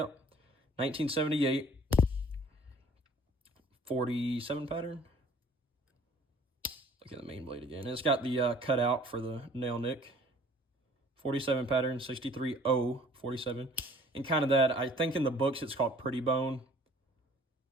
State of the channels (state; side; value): normal; both; correlation 0.53